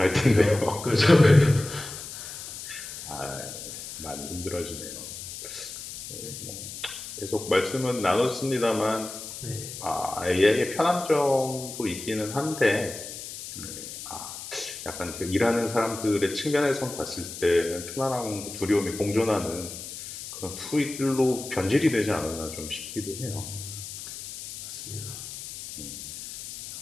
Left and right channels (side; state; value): left; noise; hiss, 10 dB below the sound